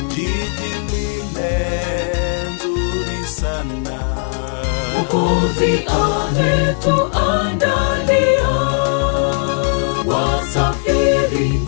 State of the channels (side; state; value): right; silent; 66 dB below the other